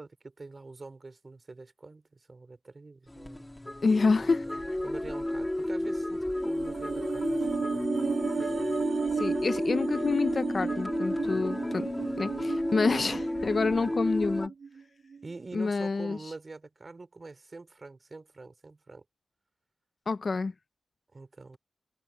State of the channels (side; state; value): both; normal; correlation 0.94